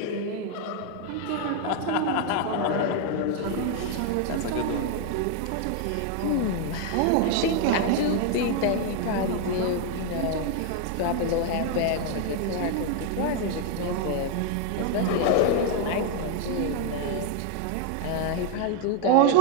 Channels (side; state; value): both; different; correlation 0.00